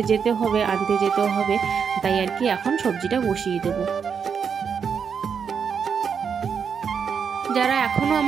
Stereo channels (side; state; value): left; quieter; 6.7 dB